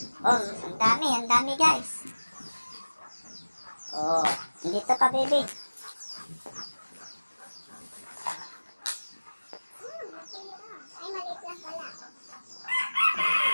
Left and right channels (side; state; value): both; inverted; correlation -1.00